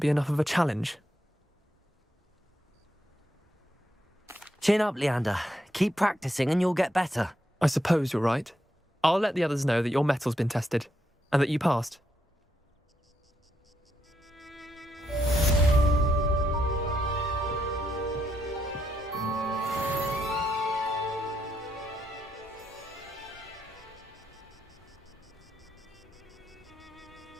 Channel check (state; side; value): normal; both; correlation 0.79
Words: enough of a challenge. Chin up, Leander. Keep practicing and you'll get better. I suppose you're right. I'll let the others know that your metal's been tested, and that you passed.